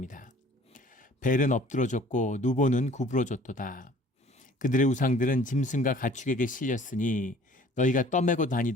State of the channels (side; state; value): both; normal; correlation 0.51